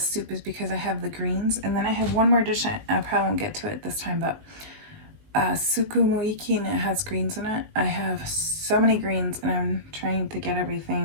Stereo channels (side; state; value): left; late; 19 ms